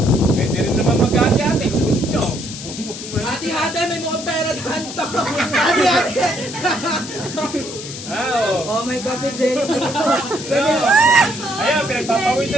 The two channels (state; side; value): noise; left; hiss, 10 dB below the sound